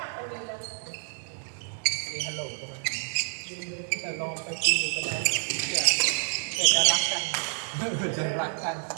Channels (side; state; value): left; silent; 57 dB below the other